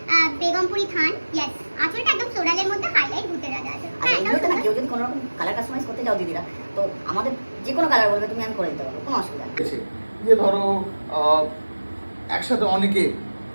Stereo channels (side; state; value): both; inverted; correlation -1.00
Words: Begampuri থান। ইয়েস, আঁচলটা একদম ফ্লোরালের মধ্যে হাইলাইট ভূতের রাজা আছে। হ্যাঁ, এটা না, কেউ যদি কোনো রকম কালার কাস্টমাইজ করতে যাও দিদিরা, তো আমাদের যে কোনো কালার বলবে তুমি, আমি করে দিতে পারবো, কোনো অসুবিধা নেই। যে ধরো একসাথে অনেকে